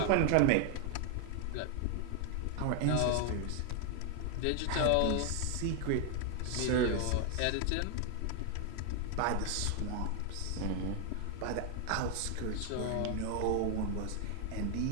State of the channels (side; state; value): both; different; correlation 0.00